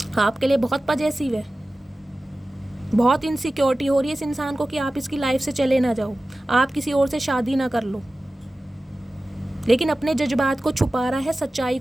आपके लिए बहुत पॉजेसिव है, बहुत इनसिक्योरिटी हो रही है इस इंसान को कि आप इसकी लाइफ से चले ना जाओ, आप किसी और से शादी ना कर लो, लेकिन अपने जज्बात को छुपा रहा है, सच्चाई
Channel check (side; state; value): both; normal; correlation 0.96